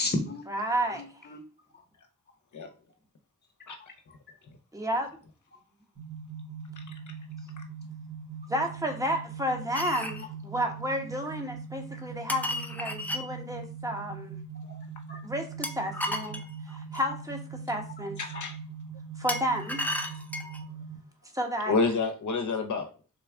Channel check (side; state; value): both; normal; correlation 0.25